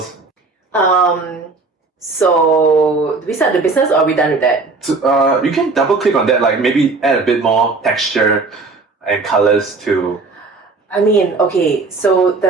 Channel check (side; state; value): left; quieter; 3.8 dB